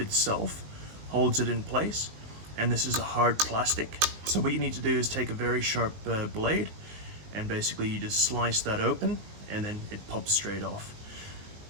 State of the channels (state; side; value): late; left; 20 ms